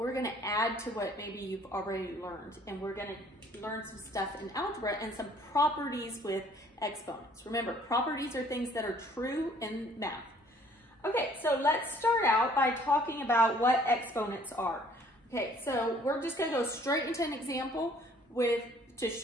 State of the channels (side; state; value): both; normal; correlation 0.58